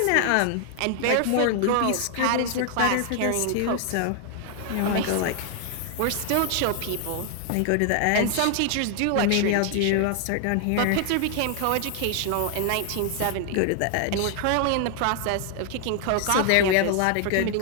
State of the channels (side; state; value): both; different; correlation 0.00